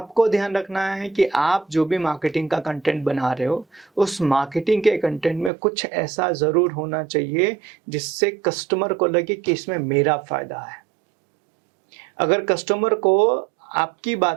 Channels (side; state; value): left; drops out; at 5.5 s